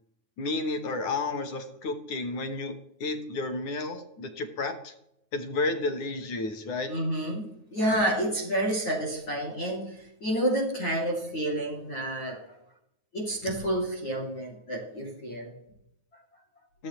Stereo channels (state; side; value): late; right; 9.4 ms